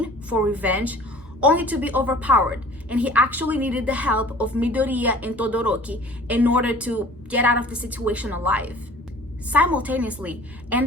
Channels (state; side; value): normal; both; correlation 0.47